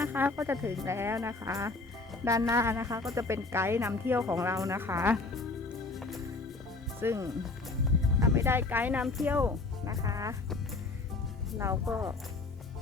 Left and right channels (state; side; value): quieter; right; 3.6 dB